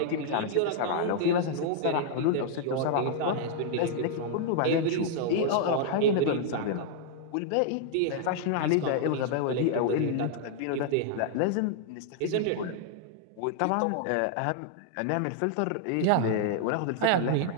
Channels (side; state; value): both; different; correlation -0.01